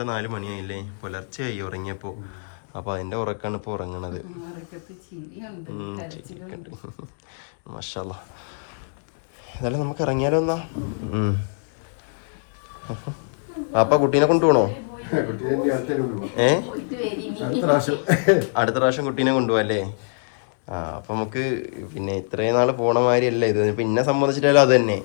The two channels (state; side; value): silent; right; digital silence